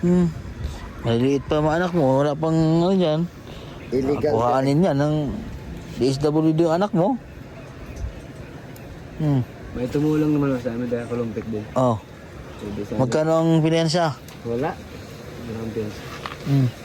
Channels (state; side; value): identical; both; correlation 1.00